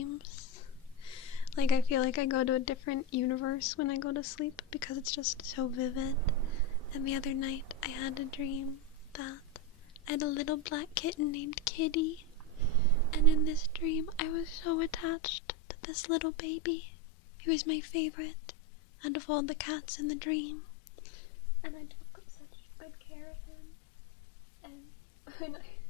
Like, I feel like I go to a different universe when I go to sleep because it's just so vivid. And the other night, I had a dream that I had a little black kitten named Kitty. And in this dream, I was so attached to this little baby. He was my favorite out of all the cats in the dream. And I took such good care of him. And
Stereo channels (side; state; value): right; drops out; at 15.2 s